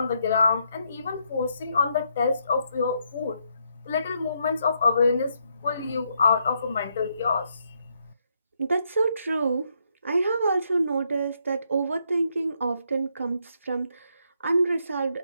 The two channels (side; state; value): both; inverted; correlation -0.76